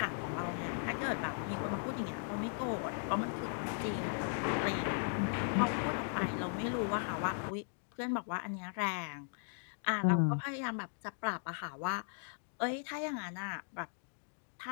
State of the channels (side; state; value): right; silent; digital silence